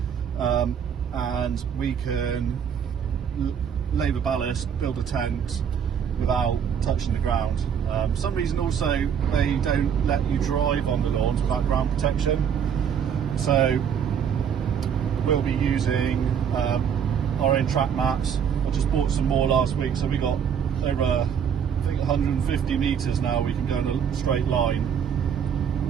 and we can lay the ballast, build a tent without touching the ground. For some reason also they don't let you drive on the lawns without ground protection, so we'll be using our own track mats. I just bought some more last week, so we got over I think 150 metres now we can go in a straight line,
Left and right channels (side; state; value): left; quieter; 7.9 dB